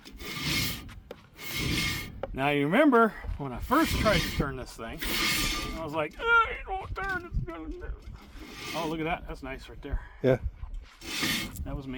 Now you remember when I first tried to turn this thing, I was like, oh, it won't turn. It's gonna do. Oh, look at that. That's nice right there. Yeah. That was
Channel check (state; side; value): identical; both; correlation 1.00